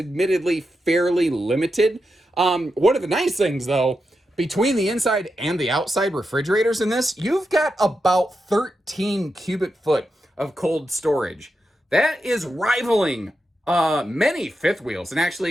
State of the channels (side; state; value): both; normal; correlation 0.88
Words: fairly limited. One of the nice things, though, between the inside and the outside refrigerators in this, you've got about 13 cubic foot of cold storage. That is rivaling many fifth wheels and